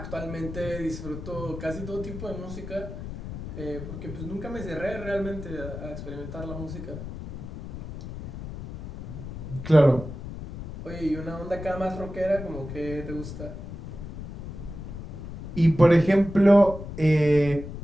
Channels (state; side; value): noise; left; rumble, 10 dB below the sound